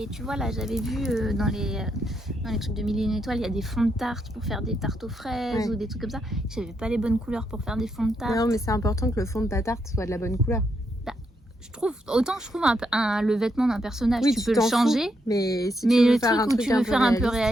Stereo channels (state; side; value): normal; both; correlation 0.79